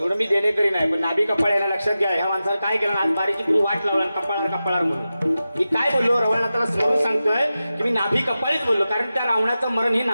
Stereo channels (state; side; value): inverted; both; correlation -0.93